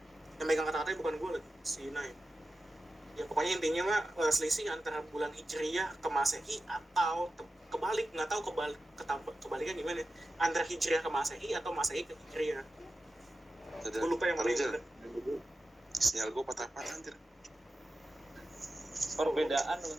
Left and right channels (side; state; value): both; normal; correlation 0.93